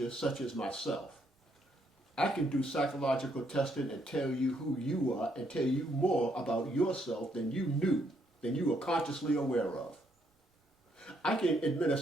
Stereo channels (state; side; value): normal; both; correlation 0.73